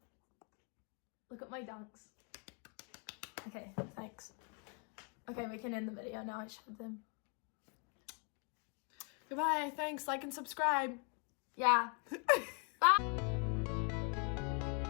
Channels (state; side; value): quieter; right; 37.4 dB